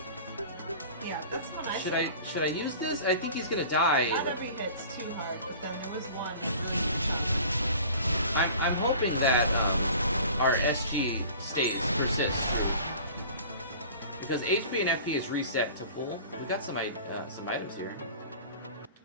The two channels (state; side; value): inverted; both; correlation -0.43